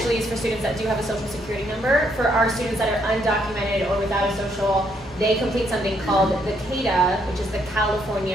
is for students that do have a social security number. For our students that are undocumented or without a social, they complete something called the CADA, which is the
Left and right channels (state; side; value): normal; both; correlation 0.73